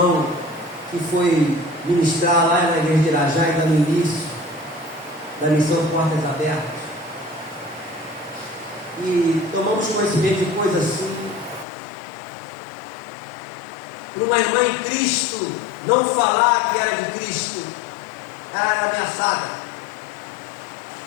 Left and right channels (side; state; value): right; drops out; at 11.7 s